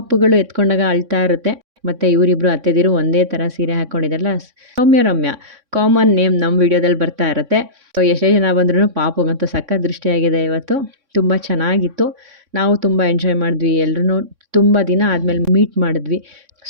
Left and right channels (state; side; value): late; left; 3.6 ms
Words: ಎತ್ಕೊಂಡಾಗ ಅಳ್ತಾ ಇರುತ್ತೆ. ಮತ್ತು ಇವರಿಬ್ರು ಅತ್ತೆದಿರು ಒಂದೇ ಥರ ಸೀರೆ ಹಾಕ್ಕೊಂಡಿದ್ದಾರಲ್ಲ, ರಮ್ಯ ಕಾಮನ್ ನೇಮ್ ನಮ್ಮ ವಿಡಿಯೋದಲ್ಲಿ ಬರ್ತಾ ಇರುತ್ತೆ. ಸೊ, ಎಷ್ಟೇ ಜನ ಬಂದ್ರೂ ಪಾಪುಗಂತೂ ಸಖತ್ ದೃಷ್ಟಿಯಾಗಿದೆ ಇವತ್ತು. ತುಂಬ ಚೆನ್ನಾಗಿತ್ತು. ನಾವು ತುಂಬ ಎಂಜಾಯ್ ಮಾಡಿದ್ವಿ. ಎಲ್ಲರೂ ತುಂಬ ದಿನ ಆದಮೇಲೆ ಮೀಟ್ ಮಾಡಿದ್ವಿ.